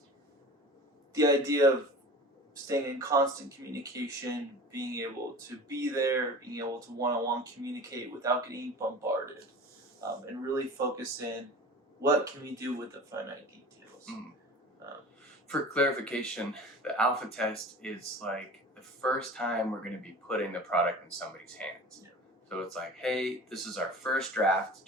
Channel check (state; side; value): normal; both; correlation 0.38